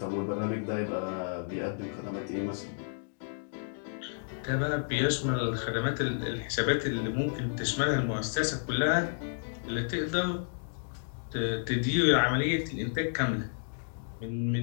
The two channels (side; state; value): right; silent; digital silence